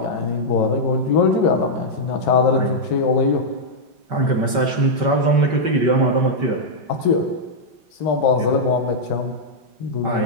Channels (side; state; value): left; late; 5.2 ms